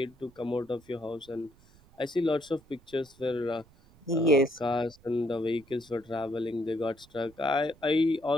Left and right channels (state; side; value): noise; right; rumble, 28 dB below the sound